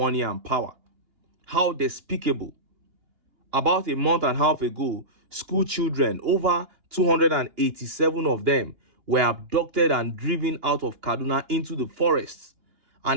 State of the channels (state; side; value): late; left; 2.9 ms